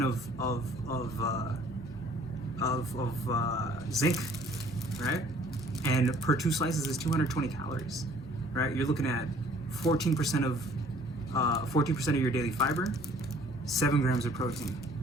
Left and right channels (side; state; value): both; normal; correlation 0.56